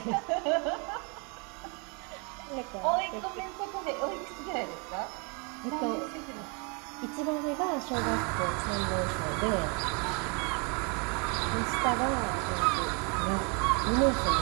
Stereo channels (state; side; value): quieter; left; 34.2 dB